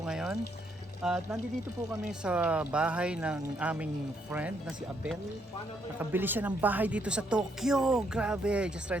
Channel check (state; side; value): normal; both; correlation 0.73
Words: ngayon. At nandito po kami sa bahay ng aming friend na si Abel. Nakabili siya ng bahay dito sa Tokyo. Grabe, just try